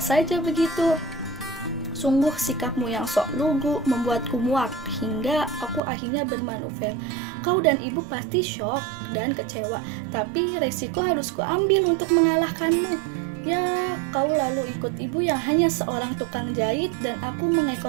begitu. Sungguh sikapmu yang sok lugu membuatku muak hingga aku akhirnya bermanuver. Kau dan ibu pasti syok dan kecewa, tapi resiko harus kuambil untuk mengalahkanmu. Ya, kau lalu ikut ibu yang hanya seorang tukang jahit dan aku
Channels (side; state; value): left; drops out; at 5.8 s